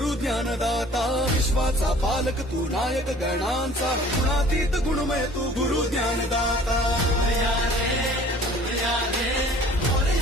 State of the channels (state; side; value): normal; both; correlation 0.50